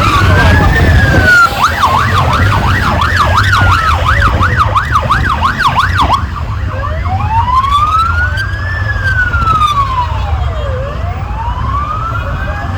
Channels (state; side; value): identical; both; correlation 1.00